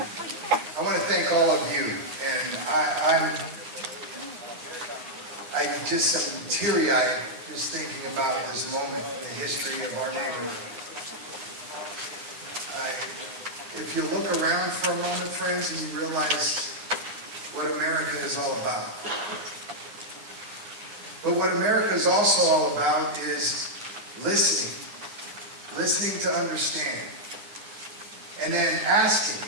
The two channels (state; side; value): late; left; 9.6 ms